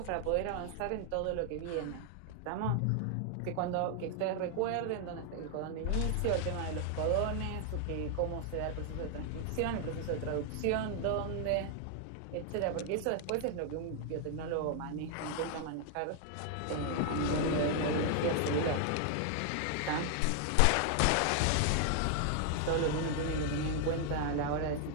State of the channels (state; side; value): different; both; correlation 0.00